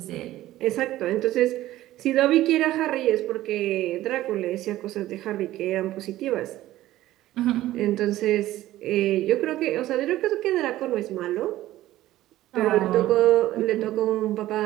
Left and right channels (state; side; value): quieter; left; 15.1 dB